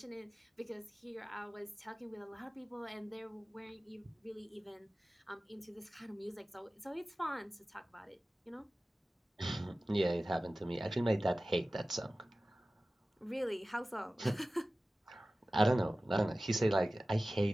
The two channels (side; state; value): both; normal; correlation 0.96